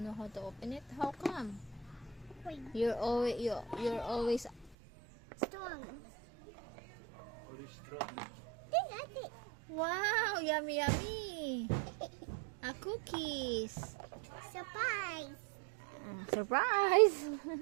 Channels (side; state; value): left; drops out; at 4.8 s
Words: know how to open it? How come? Wait, You're always strong. Or strong. Then that's it. wow, yummy yummy. A cookies. Surprise. Surprise.